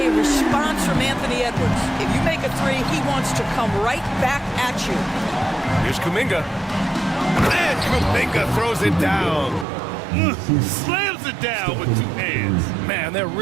response from Anthony Edwards. If you make a three, he wants to come right back at you. Here's Kuminga. And Kuminga throws it down. Slams it down with two hands. Man, they're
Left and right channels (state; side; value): drops out; left; at 9.7 s